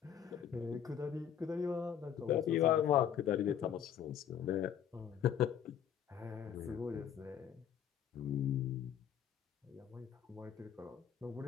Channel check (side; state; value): right; quieter; 9.1 dB